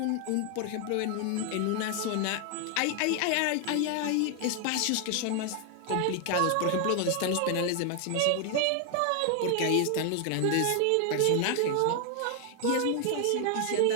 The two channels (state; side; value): different; both; correlation 0.00